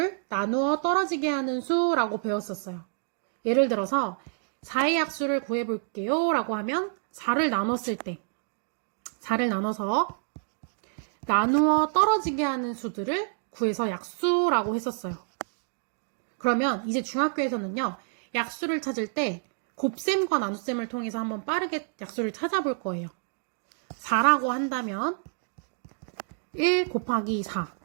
나누어 떨어지게 하는 수라고 배웠었어요. 예를 들어서 4의 약수를 구해볼게요 라고 하면 4를 나눴을 때 4를 나눠서 나누어 떨어지게 하는 수들을 구해서 약수라고 했었어요. 그러면 이제 중학교에서는요, 약수를 찾을 때 곱셈과 나눗셈을 통해서 한번 빠르게 약수를 찾아볼 거예요. 4라고 한다면 1 곱하기 4.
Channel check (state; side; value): silent; left; 59 dB below the other